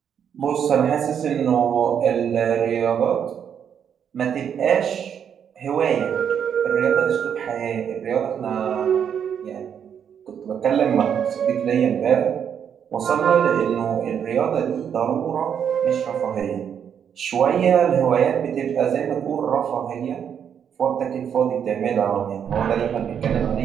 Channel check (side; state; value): left; quieter; 8.2 dB